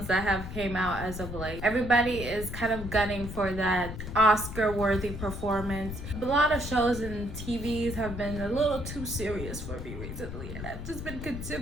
that have came out as of late. Everybody is kind of gunning for that Oscar-worthy performance. A lot of shows and TVs have been a little too serious for me recently, and I've just been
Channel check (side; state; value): left; noise; rumble, 8 dB below the sound